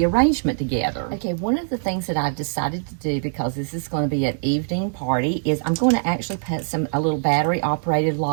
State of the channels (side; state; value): left; silent; digital silence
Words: arrangement together. Okay, one of the things that I've decided to do, because this is going to be an evening party, is I'm going to actually put a little battery operated